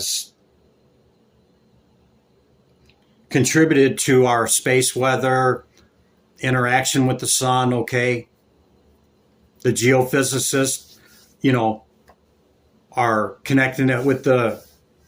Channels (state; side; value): identical; both; correlation 1.00